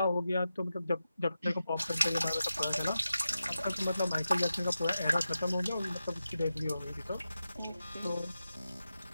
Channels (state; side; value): inverted; both; correlation -0.91